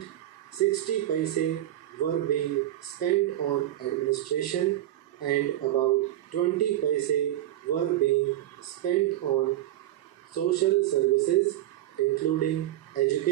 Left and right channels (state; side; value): quieter; left; 13.5 dB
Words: 60 paise were being spent on administration and about 20 paise were being spent on social services including